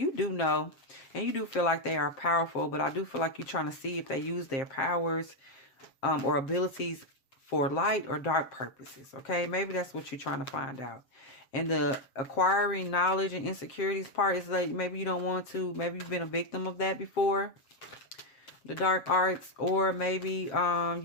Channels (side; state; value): right; late; 7.5 ms